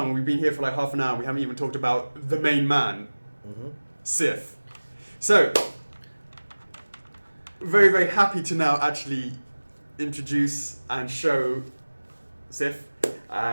we've been here for like half an hour. We haven't even talked about the main man, Sif. So, very happy to now actually introduce and show Sif.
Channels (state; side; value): inverted; both; correlation -1.00